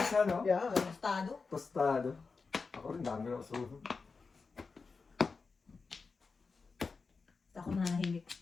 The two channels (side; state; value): right; quieter; 4.6 dB